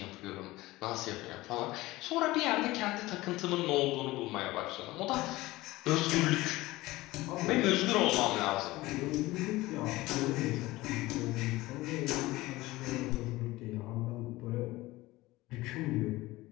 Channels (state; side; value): quieter; right; 19.0 dB